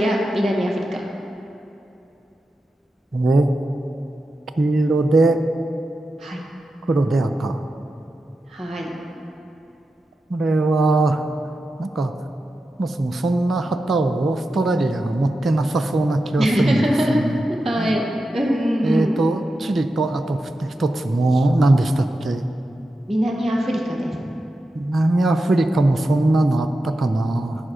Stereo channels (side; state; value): both; normal; correlation 0.90